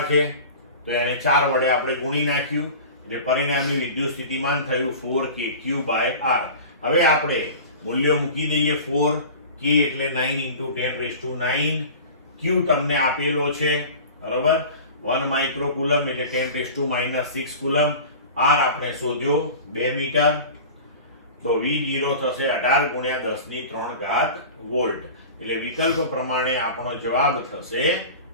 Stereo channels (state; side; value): inverted; both; correlation -0.36